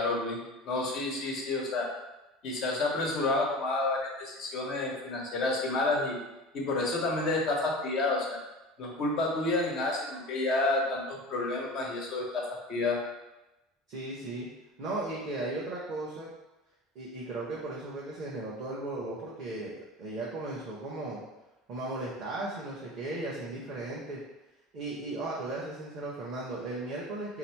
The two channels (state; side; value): normal; both; correlation 0.33